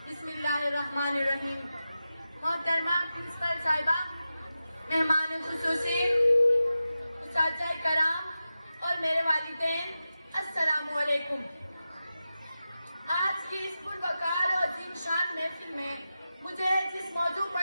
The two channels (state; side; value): inverted; both; correlation -0.92